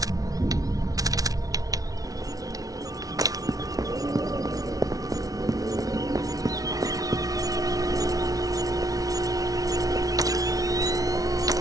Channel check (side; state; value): left; late; 0.18 ms